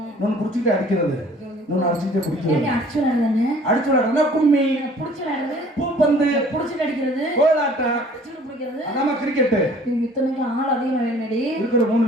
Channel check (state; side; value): normal; both; correlation 0.53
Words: ஒண்ணு புடிச்சுக்கிட்டு அடிக்கிறது, இன்னொன்னு அடிச்சுக்கிட்டு குடிக்கிறது. அடிச்சு விளையாடுறதுனா கும்மி, புடிச்சு விளையாடுறது பூப்பந்து, புடிச்சுட்டு அடிக்கிறது, கோலாட்டம், அதாம கிரிக்கெட். இத்தனைக்கு ஆள் அதிகமா வேணுடி. இருக்கிற 3